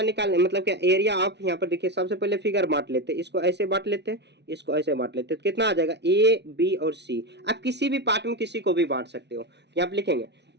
निकालने, मतलब क्या एरिया ऑफ, यहाँ पर देखिए सबसे पहले फिगर बांट लेते हैं, इसको ऐसे बांट लेते हैं, इसको ऐसे बांट लेते हैं, तो कितना आ जाएगा ए बी और सी। आप किसी भी पार्ट में किसी को भी बांट सकते हो। यहाँ पे लिखेंगे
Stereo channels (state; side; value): late; left; 0.50 ms